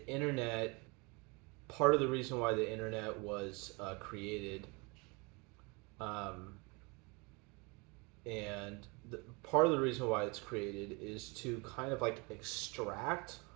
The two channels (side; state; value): left; quieter; 29.0 dB